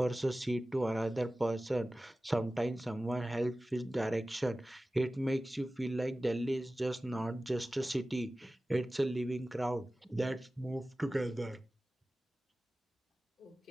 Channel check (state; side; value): normal; both; correlation 0.96